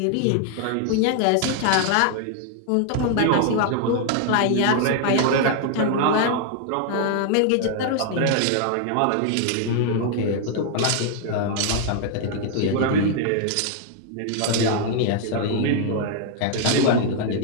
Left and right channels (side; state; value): both; different; correlation 0.00